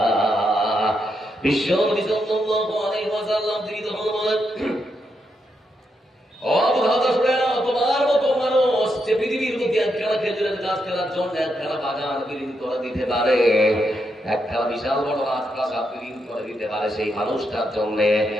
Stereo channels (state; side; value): normal; both; correlation 0.82